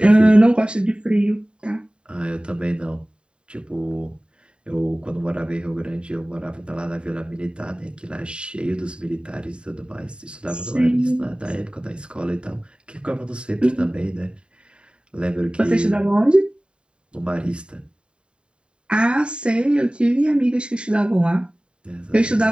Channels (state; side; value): late; left; 0.052 ms